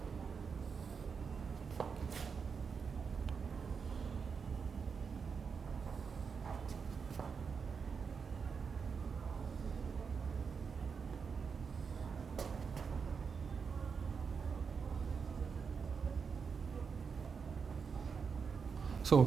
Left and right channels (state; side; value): quieter; left; 5.8 dB